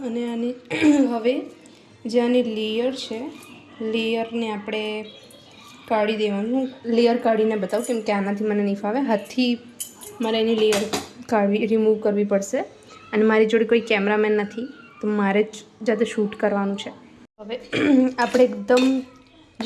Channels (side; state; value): both; identical; correlation 1.00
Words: અને આની હવે જે આની લેયર છે, લેયરને આપણે કાઢી દેવાનું. લેયર કાઢીને બતાવું, કેમ કે આનાથી મને નહીં ફાવે. હાથથી મારે એની લેયર રિમૂવ કરવી પડશે, અને મારી જોડે કોઈ કેમેરામેન નથી, તો મારે જ જાતે શૂટ કરવાનું છે. હવે આપણે એકદમ